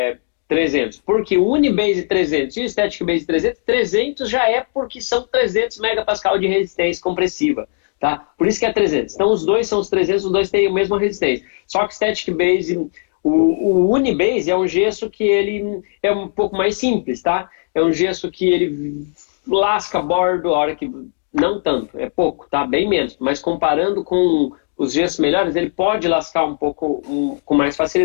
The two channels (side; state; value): right; silent; digital silence